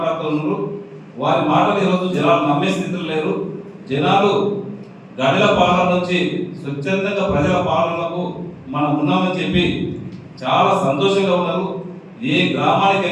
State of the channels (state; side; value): identical; both; correlation 1.00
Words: వారి మాటలు ఈరోజు జనాలు నమ్మే స్థితిలో లేరు. జనాలు గడిల పాలన నుంచి స్వచ్ఛందంగా ప్రజల పాలనకు మనం ఉన్నామని చెప్పి చాలా సంతోషంగా ఉన్నారు. ఏ గ్రామానికి